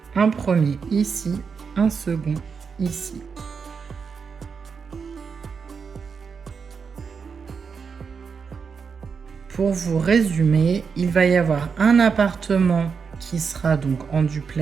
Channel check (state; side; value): quieter; left; 5.8 dB